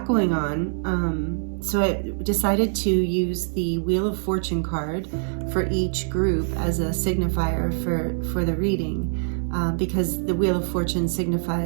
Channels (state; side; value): silent; left; digital silence